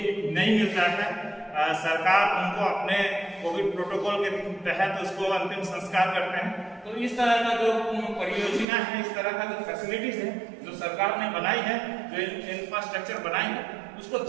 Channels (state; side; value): drops out; left; at 8.7 s